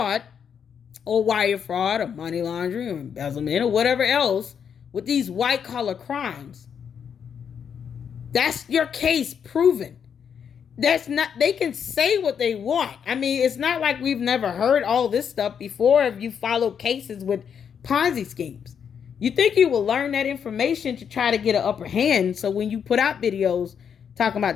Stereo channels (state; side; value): quieter; right; 7.5 dB